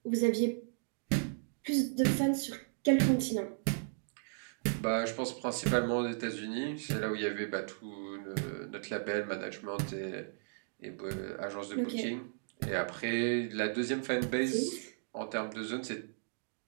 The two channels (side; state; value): left; silent; digital silence